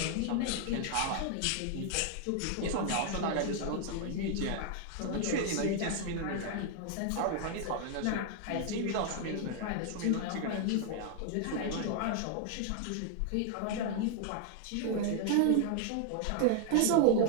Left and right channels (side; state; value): both; different; correlation 0.00